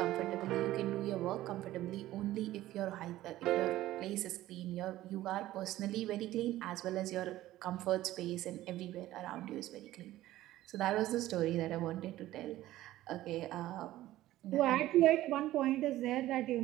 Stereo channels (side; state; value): left; quieter; 15.2 dB